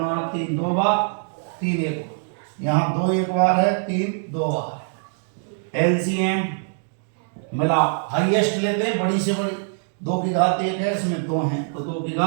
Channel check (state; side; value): silent; left; digital silence